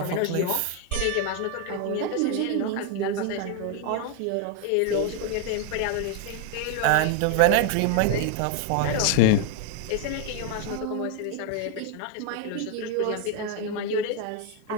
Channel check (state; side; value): different; both; correlation 0.01